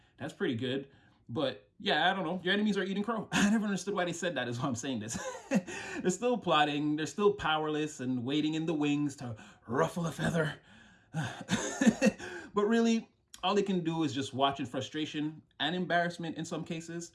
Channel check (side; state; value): both; identical; correlation 1.00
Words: that's pretty good. But yeah, I don't know. Your enemies are eating crow. I never understood why they said that, is why I'm saying this. They're still plotting. They're still powerless and waiting in the wings to ruffle a feather. But really, all they can do is just watch in frustration and embarrassment in some cases.